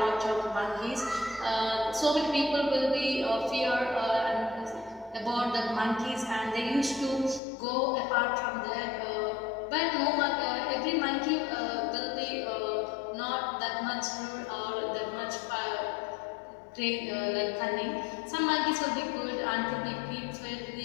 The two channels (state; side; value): drops out; right; at 7.4 s